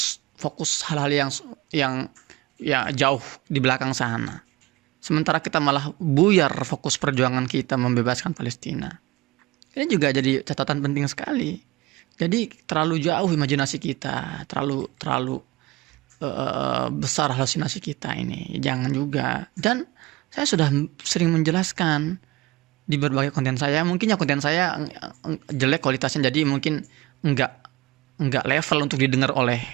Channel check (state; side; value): quieter; left; 19.5 dB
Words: hal-hal yang ya jauh di belakang sana. sementara kita malah buyar fokus perjuangan kita membebaskan Palestina. Ini juga jadi catatan penting sekali. Jadi terlalu jauh imajinasi kita, terlalu besar halusinasi kita ini. Jangan juga. Dan saya sudah sering menjelaskan di berbagai konten saya. Mungkin ya konten saya jelek kualitasnya, jadi mungkin enggak level untuk didengar